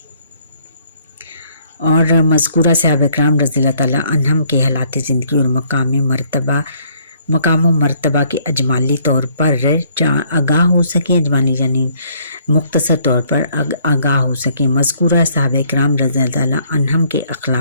اور مذکورہ صحابہ کرام رضی اللہ تعالیٰ عنہم کے حالات زندگی اور مقام و مرتبہ کے اجمالی طور پر آگاہ ہو سکیں، اجمالی یعنی مختصر طور پر آگاہ ہو سکیں۔ مذکورہ صحابہ کرام رضی اللہ تعالیٰ عنہم کے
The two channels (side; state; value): both; inverted; correlation -0.64